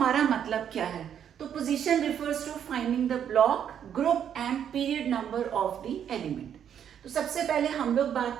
मतलब क्या है? तो position refers to finding the block, group and period number of the element. तो सबसे पहले हम लोग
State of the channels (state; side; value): quieter; left; 9.0 dB